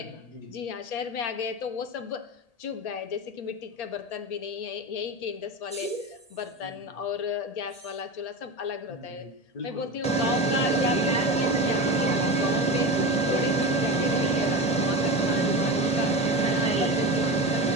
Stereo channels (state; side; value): late; right; 1.8 ms